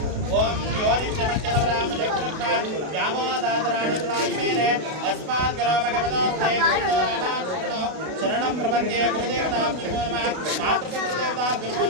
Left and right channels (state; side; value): late; left; 32 ms